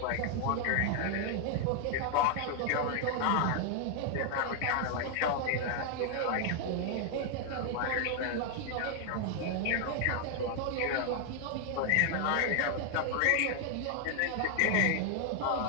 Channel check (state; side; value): different; both; correlation 0.00